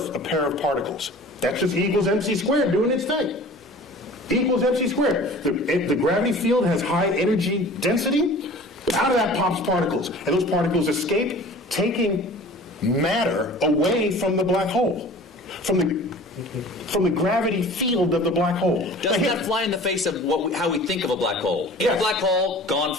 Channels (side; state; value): both; normal; correlation 0.43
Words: a pair of particles. That's just E equals mc squared doing its thing. E equals mc squared. The gravity field has high energy density. Out of that pops particles. And those particles escape, taking matter away from the black hole. From the gravity field of the black hole. Doesn't that fly in the face of how we think of a black hole? In a black hole, gone